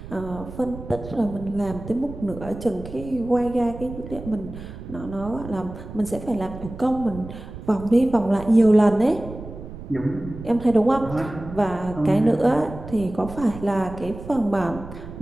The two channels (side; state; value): right; noise; rumble, 12 dB below the sound